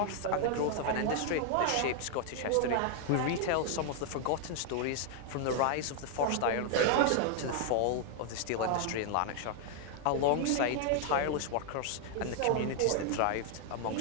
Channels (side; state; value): both; different; correlation 0.00